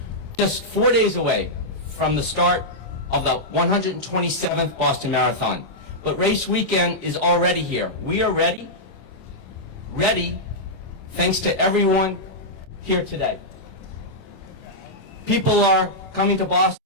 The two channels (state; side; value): late; right; 27 ms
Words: Just 4 days away from the start of the 127th Boston Marathon. But race weekend is already here. We are ready thanks to everyone here today. People are coming to Boston